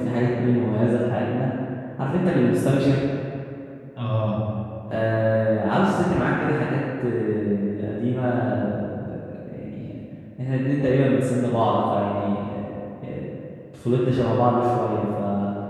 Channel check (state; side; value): identical; both; correlation 1.00